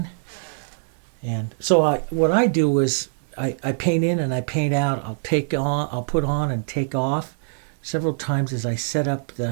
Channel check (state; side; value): silent; left; digital silence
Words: And so what I do is I paint in and I paint out. I'll put on and take off several times as I set up